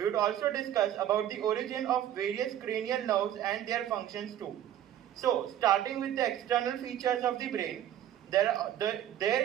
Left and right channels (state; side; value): quieter; left; 11.3 dB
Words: would also discuss about the origin of various cranial nerves and their functions too. So, starting with the external features of the brain,